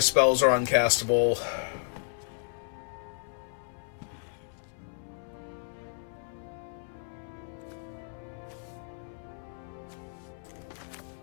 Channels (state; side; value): silent; right; 56 dB below the other